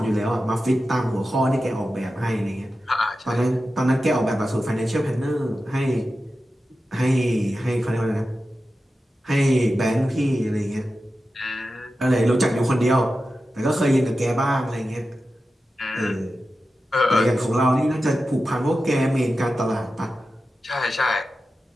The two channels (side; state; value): both; normal; correlation 0.92